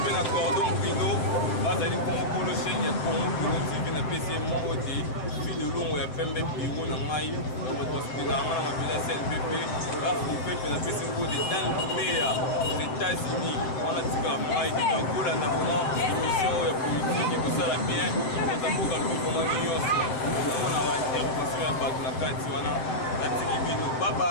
pe na cordon brino bazali comme polo chaîne ya Congo Brino TV na PC mongo te fille de longo ya pembe biro na mai na hospital na ngana mabila CNPP la coupe pe na PC mongo de dans le meilleur aux États-Unis on a tika mai de Angola na vraiment émission ya politique ko sala bien ko tamboka lu ko mani yoso na mona wa intervention ya batu na kati wana atiki bino bye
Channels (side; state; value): right; late; 7.9 ms